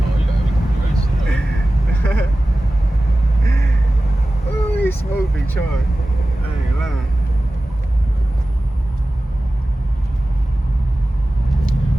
Oh, he smoked Big Troy. I ain't lying.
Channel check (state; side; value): normal; both; correlation 0.96